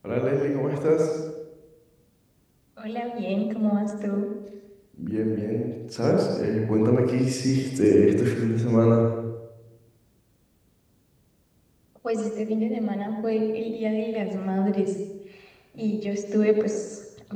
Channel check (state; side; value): identical; both; correlation 1.00